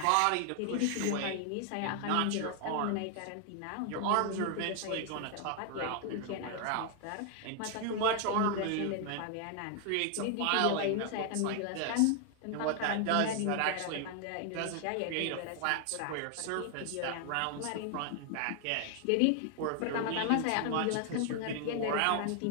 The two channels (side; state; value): both; different; correlation 0.00